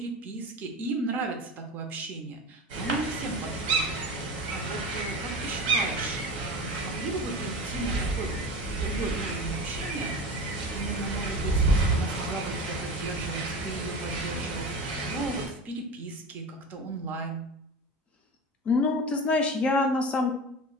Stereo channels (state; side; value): normal; both; correlation 0.30